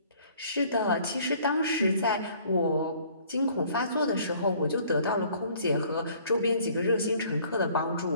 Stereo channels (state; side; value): inverted; both; correlation -0.56